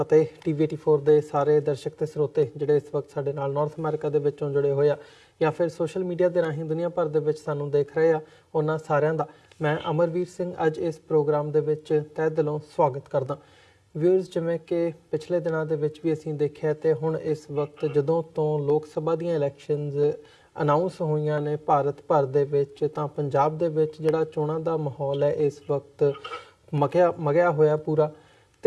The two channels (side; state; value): both; identical; correlation 1.00